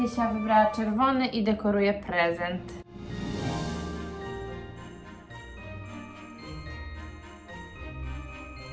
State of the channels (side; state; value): both; identical; correlation 1.00